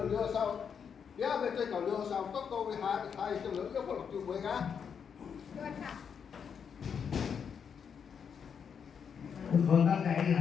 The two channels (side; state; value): right; quieter; 7.0 dB